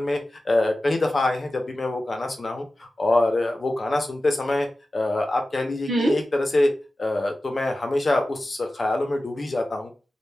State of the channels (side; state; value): both; normal; correlation 0.95